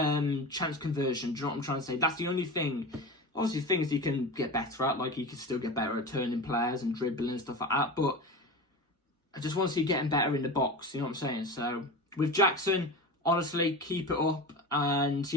conversion. Do you know what I'm trying to say? That's the only thing. Obviously, things he can get better at. Like, he can still get better at turning players and dribbling and stuff like that. But I just want to see getting better in the box. You know what I'm saying? So, with Jackson, honestly, keep it up. And,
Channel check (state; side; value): normal; both; correlation 0.28